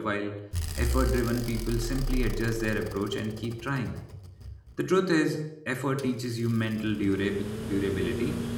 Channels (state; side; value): identical; both; correlation 1.00